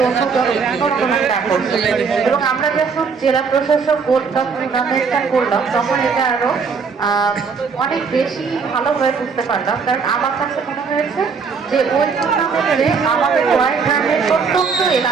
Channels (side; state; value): left; quieter; 5.4 dB